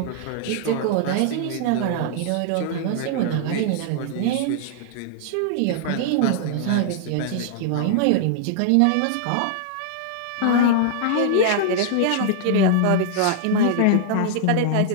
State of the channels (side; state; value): both; different; correlation -0.01